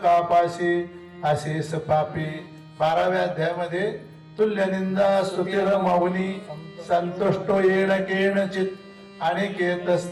पाशी अशेष पापी. 12व्या अध्यायामध्ये तुल्य निंदा स्तुतीर मौनी संतुष्टो येण केण चित अनिकेत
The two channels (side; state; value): both; identical; correlation 1.00